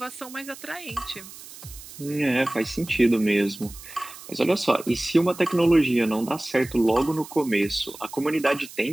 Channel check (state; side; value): noise; right; hiss, 16 dB below the sound